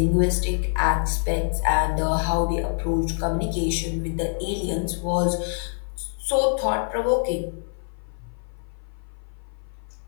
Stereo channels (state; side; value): silent; right; 57 dB below the other